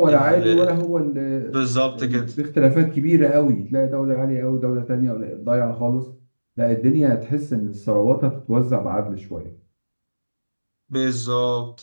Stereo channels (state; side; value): inverted; both; correlation -1.00